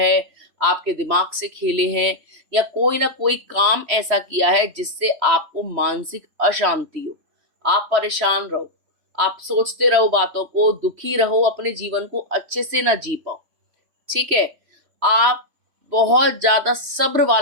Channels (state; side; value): late; left; 3.1 ms